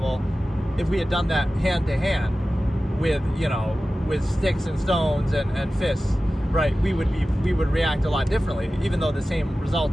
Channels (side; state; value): both; normal; correlation 0.95